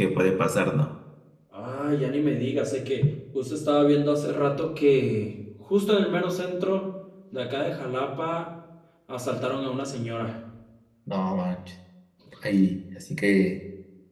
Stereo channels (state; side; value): identical; both; correlation 1.00